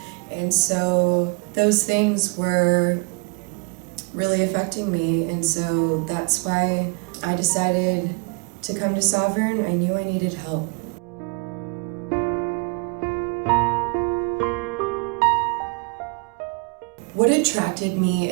and so those things were really affecting me, and so that's why I decided to come to Sovereign. I knew I needed help. What attracted me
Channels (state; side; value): quieter; left; 34.3 dB